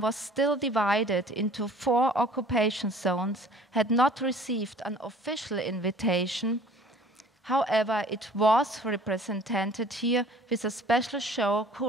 was still divided into 4 occupation zones, had not received an official invitation. However, it was represented here with a special show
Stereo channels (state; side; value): normal; both; correlation 0.50